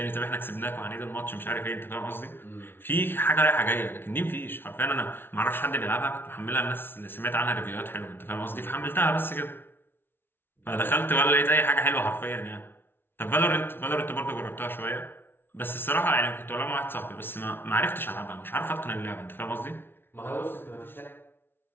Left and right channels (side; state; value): right; late; 0.11 ms